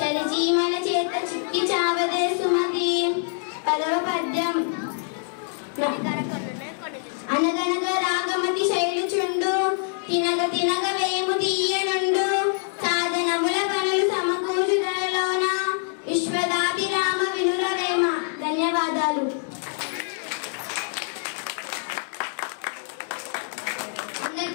చేత చిక్కి చావదే సుమతి. 10వ పద్యం. అనగనగ రాగమతి శైలుచుండు తినగ తినగ వేము తీయనుండు సాధనముల పనులు సమకూర్చు ధరలోన విశ్వదాభిరామ వినురవేమ. ధన్యవాదాలు.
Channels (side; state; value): right; silent; 62 dB below the other